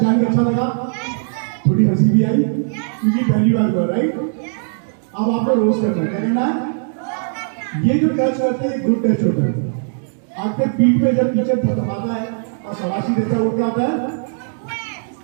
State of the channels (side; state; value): left; silent; digital silence